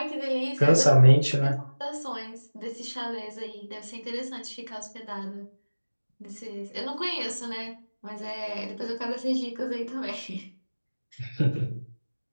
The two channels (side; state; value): both; inverted; correlation -1.00